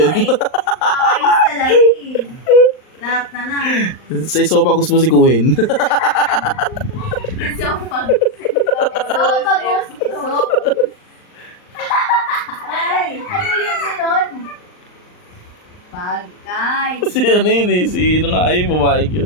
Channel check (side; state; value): right; late; 39 ms